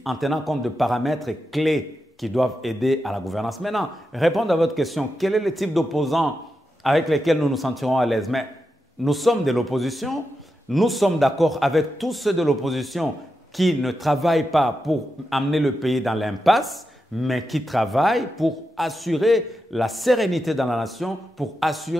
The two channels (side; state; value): both; normal; correlation 0.88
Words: en tenant compte de paramètres clés qui doivent aider à la gouvernance. Maintenant, répondre à votre question, quel est le type d'opposants avec lesquels nous nous sentirons à l'aise? Mais nous sommes de l'opposition, nous sommes d'accord avec tous ceux de l'opposition qui ne travaillent pas pour amener le pays dans l'impasse, mais qui travaillent pour assurer la sérénité dans la nation, pour